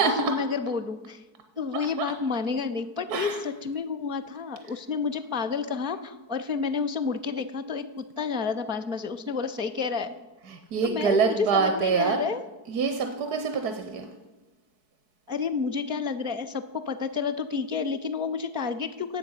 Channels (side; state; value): left; late; 4.6 ms